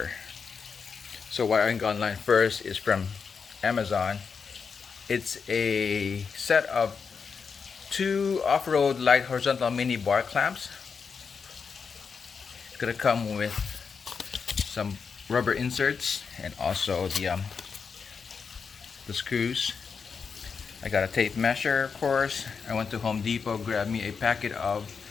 So what I got online first is from Amazon. It's a set of two off-road light horizontal mini bar clamps. It's gonna come with some rubber inserts and also the screws. I got a tape measure, of course. I went to Home Depot, grabbed me a packet of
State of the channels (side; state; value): right; quieter; 5.8 dB